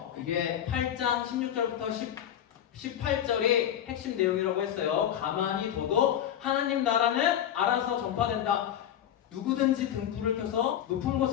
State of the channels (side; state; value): right; quieter; 10.4 dB